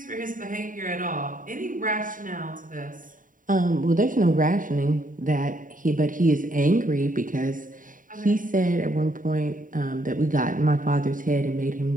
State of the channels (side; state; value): left; late; 0.39 ms